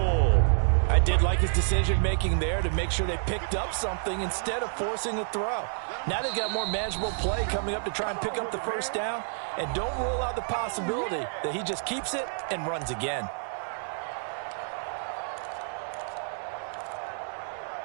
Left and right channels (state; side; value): silent; left; digital silence